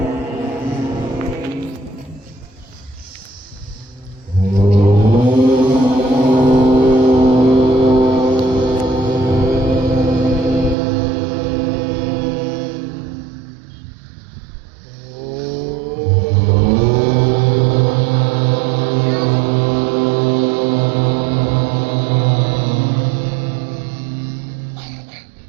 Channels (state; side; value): drops out; left; at 10.8 s